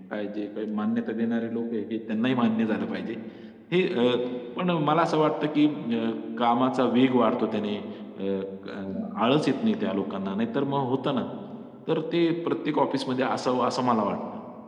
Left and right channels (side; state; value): both; identical; correlation 1.00